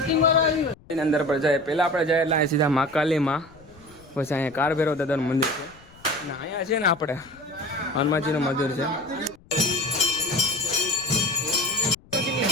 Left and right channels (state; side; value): noise; left; rumble, 26 dB below the sound